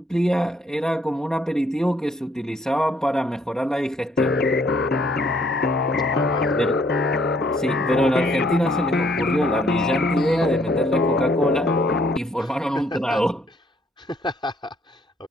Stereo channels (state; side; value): normal; both; correlation 0.66